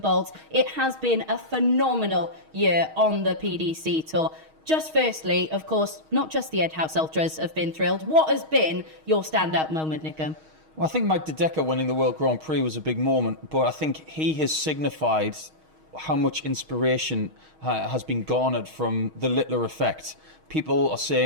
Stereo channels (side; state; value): left; late; 6.4 ms